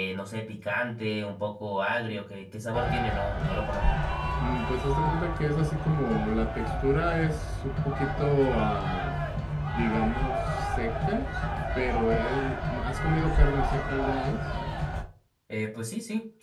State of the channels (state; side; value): identical; both; correlation 1.00